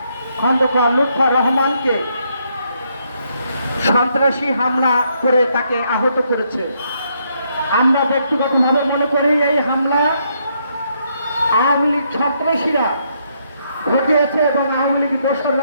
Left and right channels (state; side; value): inverted; both; correlation -0.75